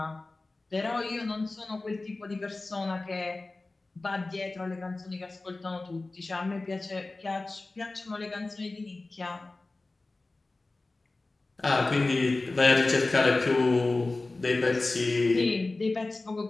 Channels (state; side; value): quieter; right; 3.2 dB